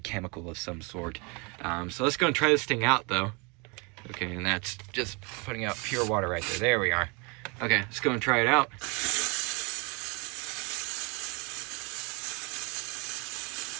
of some sort. So let's go and try this thing out though. Okay, and that's just putting out pure water right there. There we are. Okay, let's go and try it out.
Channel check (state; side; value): quieter; left; 30.7 dB